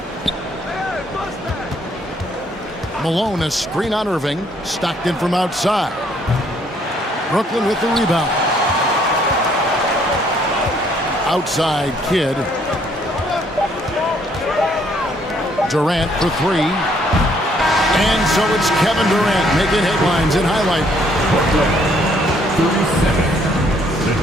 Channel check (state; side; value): normal; both; correlation 0.66